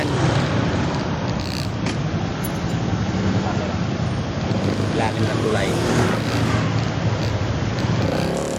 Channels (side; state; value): both; identical; correlation 1.00